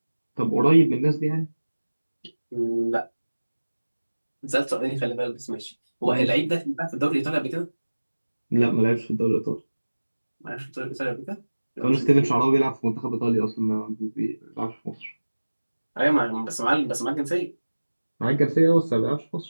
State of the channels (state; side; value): inverted; both; correlation -1.00